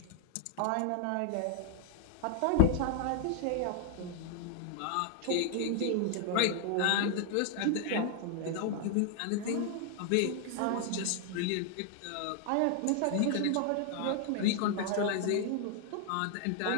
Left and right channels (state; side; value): different; both; correlation 0.00